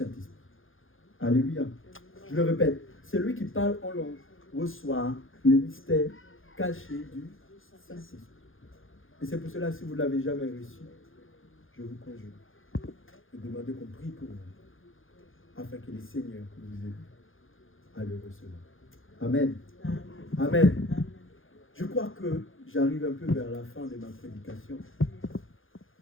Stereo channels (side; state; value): right; late; 0.59 ms